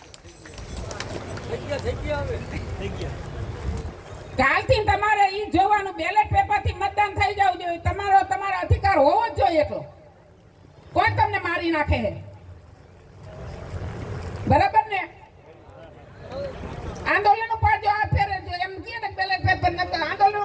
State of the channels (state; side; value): identical; both; correlation 1.00